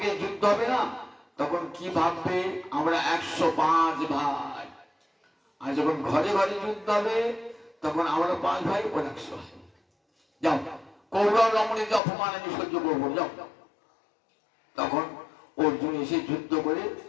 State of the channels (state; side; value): drops out; right; at 12.0 s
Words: যুদ্ধ হবে না তখন কি ভাববে আমরা 105 ভাই, আর যখন ঘরে ঘরে যুদ্ধ হবে তখন আমরা 5 ভাই, ওর 100 ভাই। যাও কৌরব রমণীকে অপমান আমি সহ্য করবো, যাও। তখন অর্জুন এসে যুদ্ধ করে